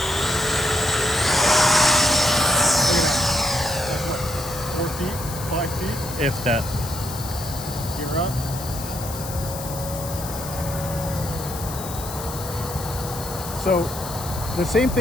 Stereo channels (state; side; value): noise; left; hiss, 10 dB below the sound